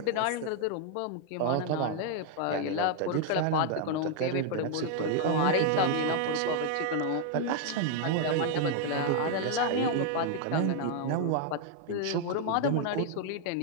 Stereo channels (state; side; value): different; both; correlation 0.00